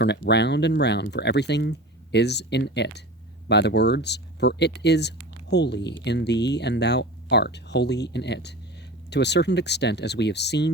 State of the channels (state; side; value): normal; both; correlation 0.34